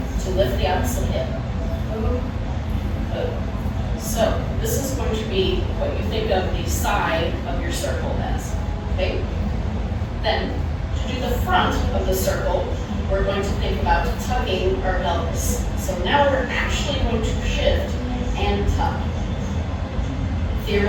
to lift the opposite hip. Good. So this is going to be what you think of the side of your circle as. Okay? Then, to do the front of the circle, we're going to think about tucking our pelvis. So now we're actually going to shift and tuck.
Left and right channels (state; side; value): identical; both; correlation 1.00